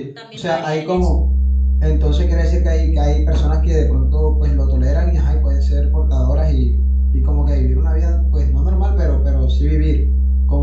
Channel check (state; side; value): identical; both; correlation 1.00